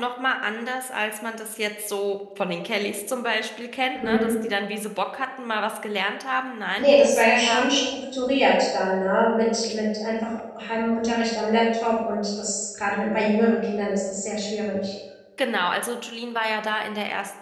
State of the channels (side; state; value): both; identical; correlation 1.00